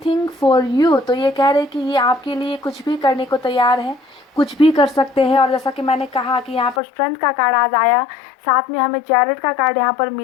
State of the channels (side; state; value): right; drops out; at 6.8 s